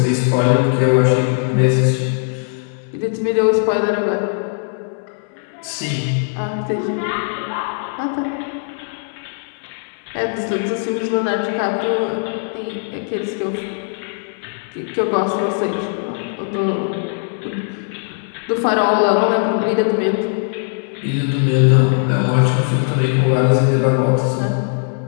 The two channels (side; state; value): right; silent; digital silence